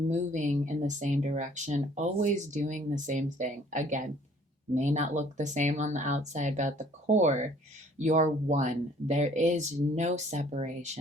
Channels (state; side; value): normal; both; correlation 0.57